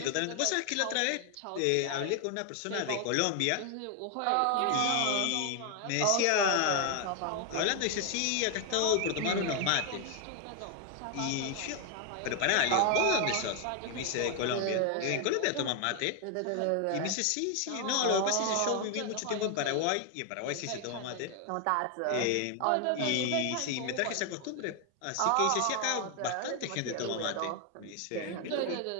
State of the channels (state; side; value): different; both; correlation 0.00